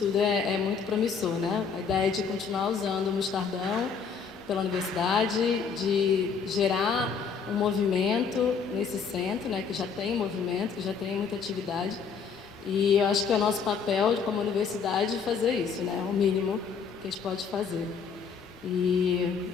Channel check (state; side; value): quieter; right; 6.0 dB